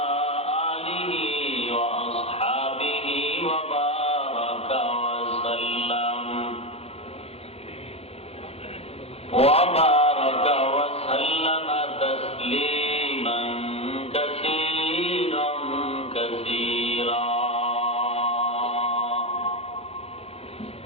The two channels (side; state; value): right; late; 0.29 ms